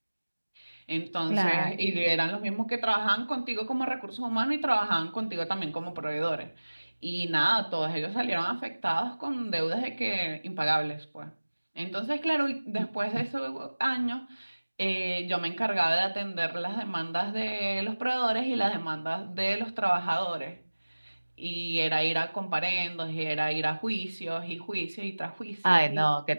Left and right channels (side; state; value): both; inverted; correlation -1.00